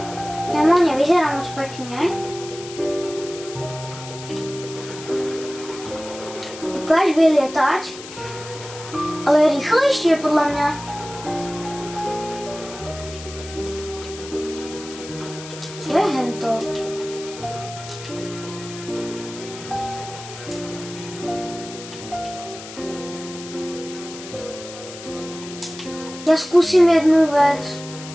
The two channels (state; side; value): noise; left; hiss, 14 dB below the sound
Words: Kámo, nevyzerá moc pekne. Ukáž vylietať. Ale rýchlejšie podľa mňa. Čo je hento? Ja skúsim jednu vec.